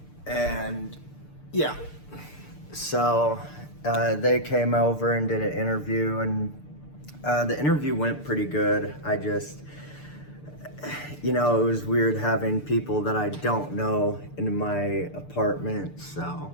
And yeah, so they came over and did an interview, and the interview went pretty good. It was weird having people that I don't know in my apartment.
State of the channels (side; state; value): right; late; 6.8 ms